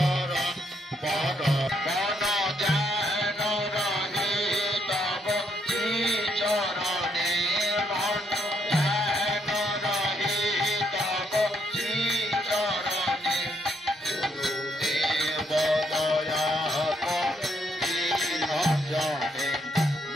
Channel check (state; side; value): normal; both; correlation 0.74